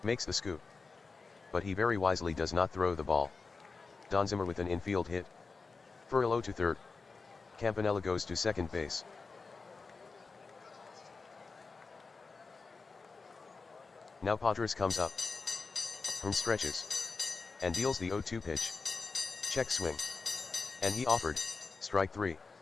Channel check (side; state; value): right; quieter; 4.4 dB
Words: Makes the scoop. But he very wisely does not throw the ball. Don Zimmer with an infield hit. Furillo to third. Campanella goes to second base. Now Padres comes up. Hearn stretches. And deals the 0-2 pitch. Check swing. And he offered. Strike 3.